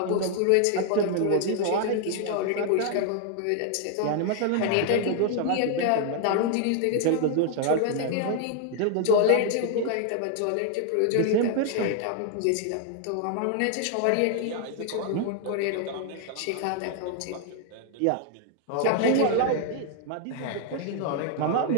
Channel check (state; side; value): different; both; correlation 0.00